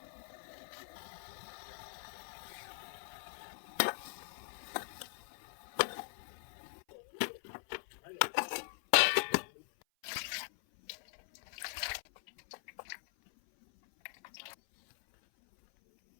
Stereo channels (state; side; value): silent; right; 51 dB below the other